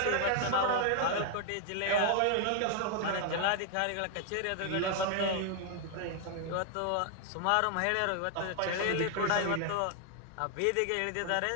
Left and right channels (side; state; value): both; different; correlation 0.00